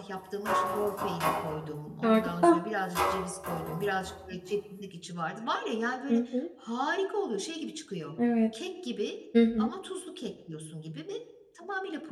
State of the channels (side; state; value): both; identical; correlation 1.00